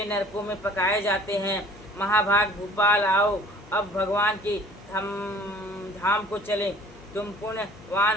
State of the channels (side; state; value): left; noise; hum, 22 dB below the sound